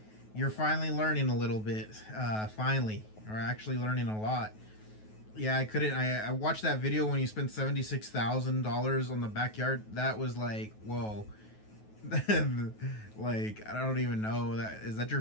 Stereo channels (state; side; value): late; right; 9.3 ms